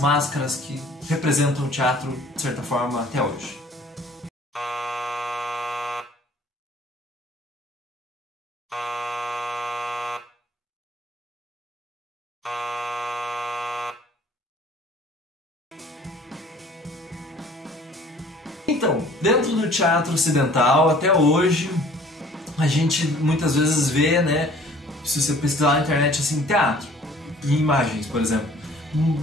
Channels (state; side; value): normal; both; correlation 0.52